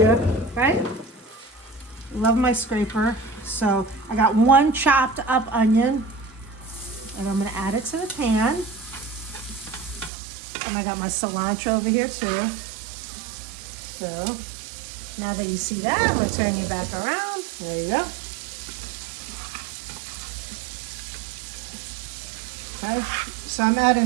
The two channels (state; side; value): drops out; left; at 10.1 s